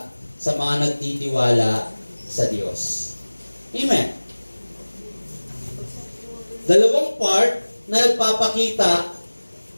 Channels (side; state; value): both; inverted; correlation -1.00